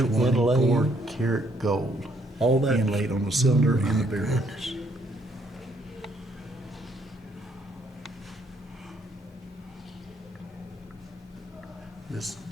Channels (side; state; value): both; normal; correlation 0.69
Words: inlaid. karat gold. All that inlaid on the cylinder Oh, and the my barrel. goodness.